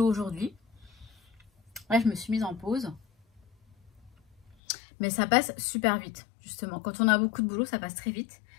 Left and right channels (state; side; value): drops out; right; at 4.5 s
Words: aujourd'hui. Là, je me suis mise en pause. Mais ça passe super vite, justement. Quand on a beaucoup de boulot, ça passe très vite.